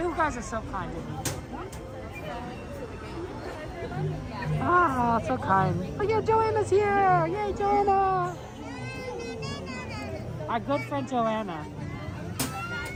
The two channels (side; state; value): both; identical; correlation 1.00